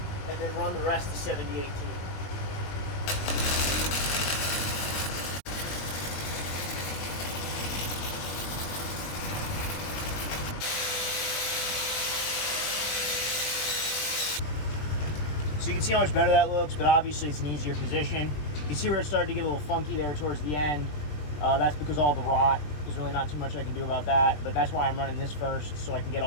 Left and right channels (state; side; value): late; right; 20 ms